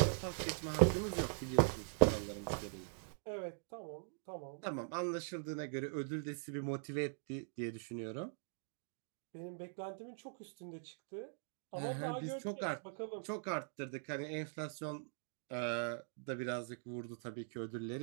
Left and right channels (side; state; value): left; silent; digital silence